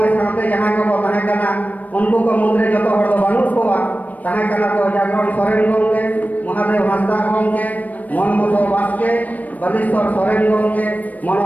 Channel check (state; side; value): late; right; 0.076 ms